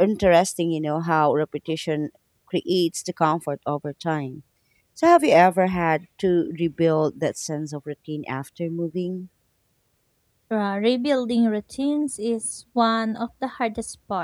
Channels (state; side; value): identical; both; correlation 1.00